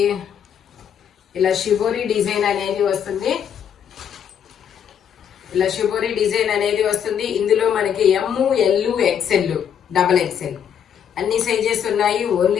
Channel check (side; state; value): right; quieter; 8.5 dB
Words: ఇలా షిబోరి డిజైన్ అనేది వస్తుంది. ఇలా షిబోరి డిజైన్ అనేది వస్తుంది. ఇందులో మనకి M, L, XL, XXL అన్ని సైజెస్ ఉన్నాయి.